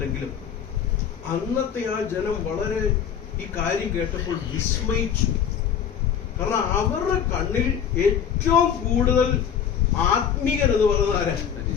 അന്നത്തെ ആ ജനം വളരെ ഈ കാര്യം കേട്ടപ്പോൾ വിസ്മയിച്ചു. കാരണം അവരുടെ കണ്ണിൽ ഏറ്റവും കൂടുതൽ ആത്മീകൻ എന്ന് പറയുന്നത് ആരാ?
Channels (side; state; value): right; quieter; 8.2 dB